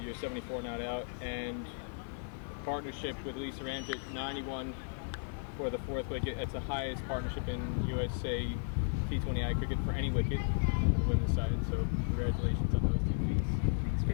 74 not out, and partnership with Lisa Ramjit, 91 for the fourth wicket. That's the highest partnership in USA T20I cricket for any wicket on the women's side. So congratulations on those two feats. Thanks,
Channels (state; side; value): silent; right; 55 dB below the other